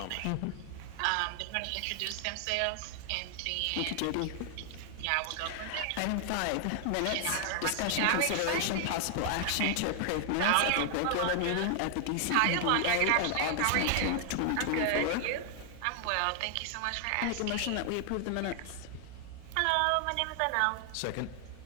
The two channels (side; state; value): both; different; correlation 0.00